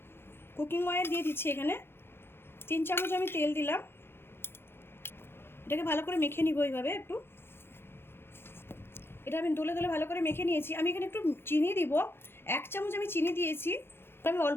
কুকিং অয়েল দিয়ে দিচ্ছি। এখানে 3 চামচ আমি তেল দিলাম। এটাকে ভালো করে মেখে নিব এইভাবে একটু। এটা আমি দোলে দোলে ভালো করে মেখে নিয়েছি। আমি এখানে একটু চিনি দিব। 1 চামচ আমি চিনি দিয়েছি। আমি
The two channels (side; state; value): right; late; 0.11 ms